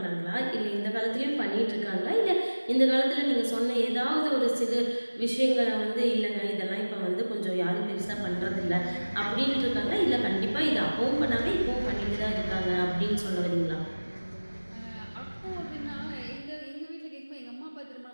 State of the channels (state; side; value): inverted; both; correlation -1.00